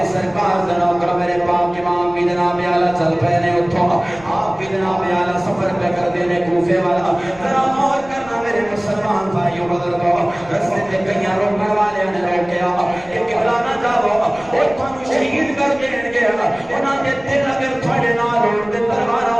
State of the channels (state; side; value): noise; left; rumble, 23 dB below the sound